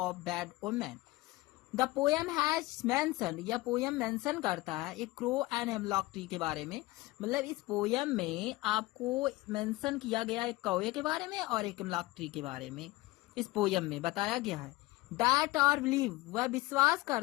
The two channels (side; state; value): right; quieter; 19.9 dB